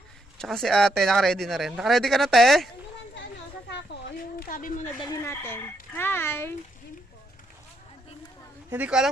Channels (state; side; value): normal; both; correlation 0.76